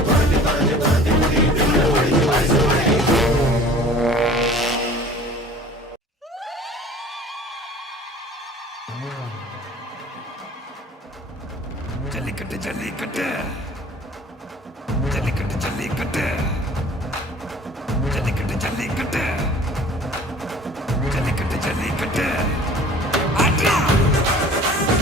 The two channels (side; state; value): both; normal; correlation 0.47